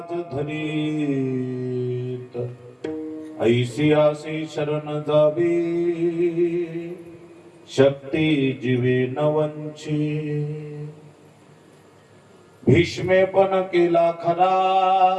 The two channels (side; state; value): both; identical; correlation 1.00